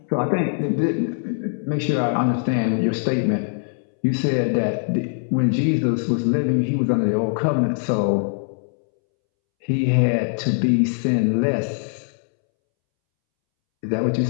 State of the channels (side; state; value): right; silent; 64 dB below the other